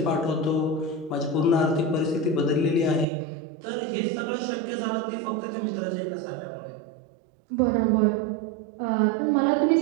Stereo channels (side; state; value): left; drops out; at 3.1 s